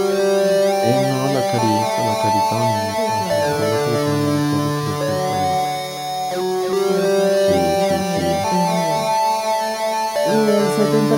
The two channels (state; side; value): identical; both; correlation 1.00